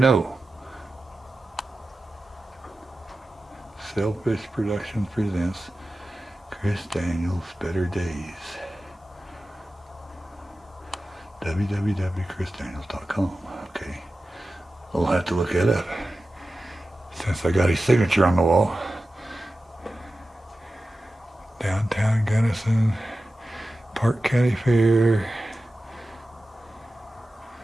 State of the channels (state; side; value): normal; both; correlation 0.94